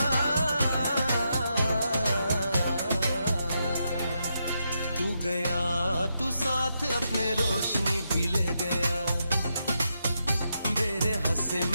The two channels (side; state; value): both; inverted; correlation -0.83